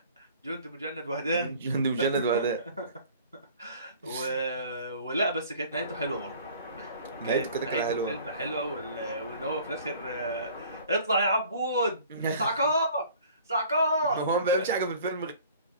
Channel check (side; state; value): both; inverted; correlation -0.49